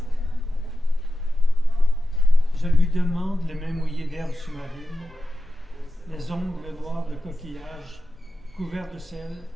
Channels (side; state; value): both; normal; correlation 0.92